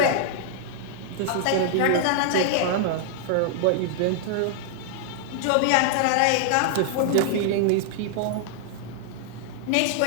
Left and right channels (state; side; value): different; both; correlation -0.01